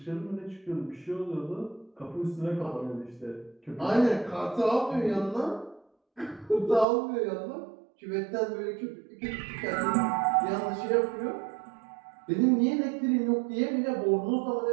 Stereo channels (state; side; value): drops out; left; at 6.9 s